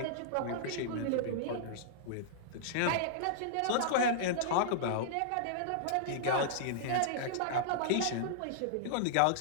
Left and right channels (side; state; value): both; different; correlation -0.02